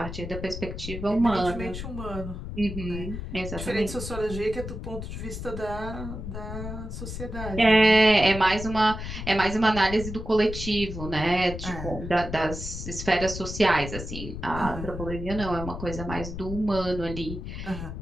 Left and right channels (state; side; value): noise; left; rumble, 7 dB below the sound